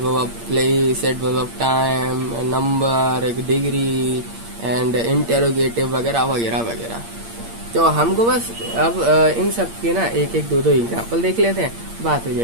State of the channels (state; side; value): late; left; 8.6 ms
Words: of place, adverb of time, number, एक डिग्री एंड इंटेरोगेटिव वगैरह वगैरह वगैरह। तो हमको बस अब इन सब के ना एक एक दो एग्जाम्पल देख लेते हैं, बात हो